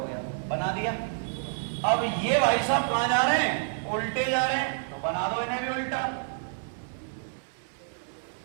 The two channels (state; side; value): silent; left; digital silence